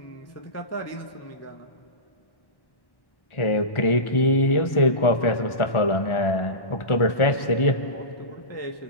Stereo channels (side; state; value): right; late; 1.4 ms